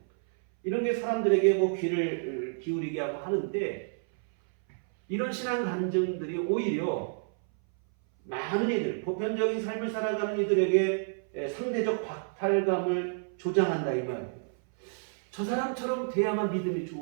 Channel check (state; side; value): silent; left; 58 dB below the other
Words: 이런 게 사람들에게 뭐 귀를 기울이게 하고 하는데 이런 신앙 간증들이 오히려 많은 이들, 보편적인 삶을 살아가는 이들에게 상대적 박탈감을 조장한다 이 말이에요. 저 사람처럼 돼야만 믿음이